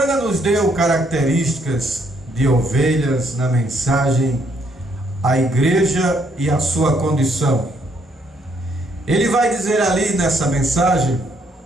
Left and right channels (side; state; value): both; normal; correlation 0.70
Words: nos deu características de ovelhas na mensagem A Igreja e a Sua Condição. Ele vai dizer ali nessa mensagem